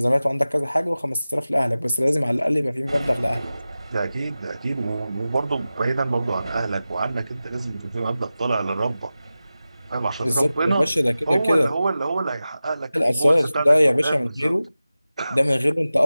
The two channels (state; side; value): inverted; both; correlation -0.95